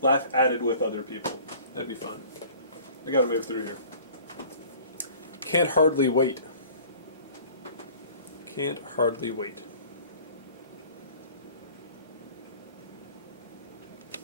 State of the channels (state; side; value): inverted; both; correlation -0.48